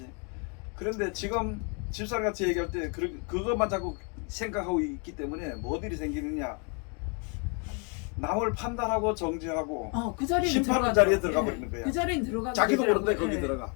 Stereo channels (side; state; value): right; quieter; 36.1 dB